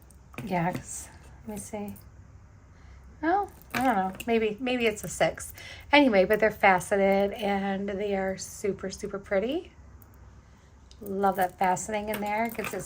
Yeah, let me see. Oh, I don't know. Maybe it's a 6. Anyway, but they're faceted and they are super, super pretty. Love that faceting in there. Gives it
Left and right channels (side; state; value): both; identical; correlation 1.00